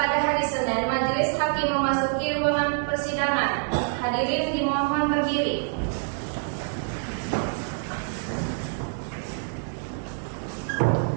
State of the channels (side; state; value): left; silent; 56 dB below the other